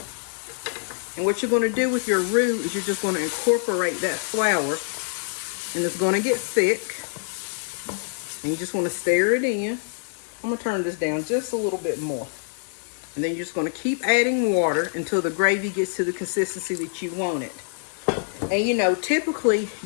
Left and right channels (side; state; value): right; silent; 55 dB below the other